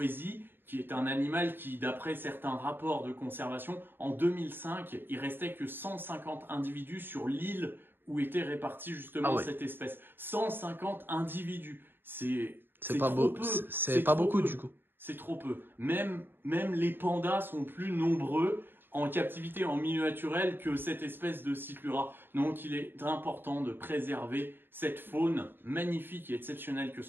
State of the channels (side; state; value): left; late; 0.098 ms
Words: qui est un animal qui, d'après certains rapports de conservation, en 2005, il restait que 150 individus sur l'île où était répartie justement cette espèce. 150 individus, c'est pas beau, c'est pas beaucoup du coup. C'est trop peu. Même les pandas sont plus nombreux en captivité en milieu naturel que cette espèce de Cyclura. Donc il est important de préserver cette faune magnifique et exceptionnelle que